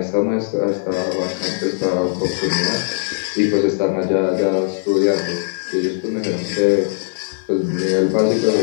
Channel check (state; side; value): silent; right; digital silence